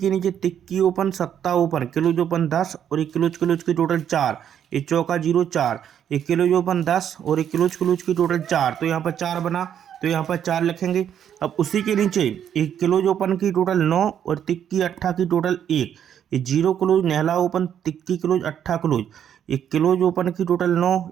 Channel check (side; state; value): left; quieter; 9.3 dB